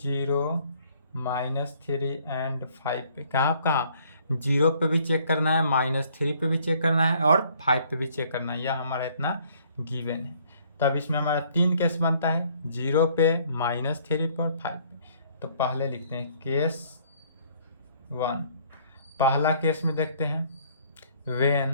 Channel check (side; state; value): both; inverted; correlation -0.61